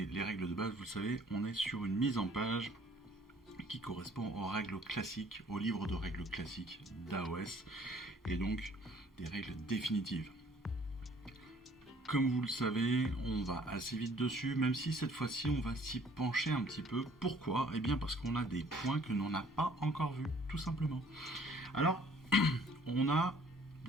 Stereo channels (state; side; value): normal; both; correlation 0.57